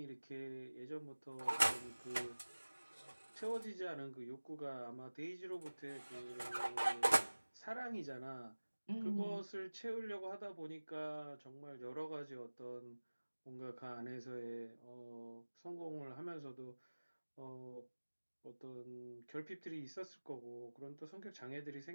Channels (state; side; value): inverted; both; correlation -1.00